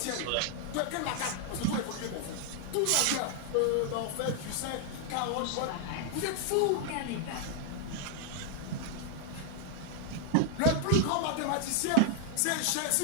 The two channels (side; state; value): both; different; correlation 0.00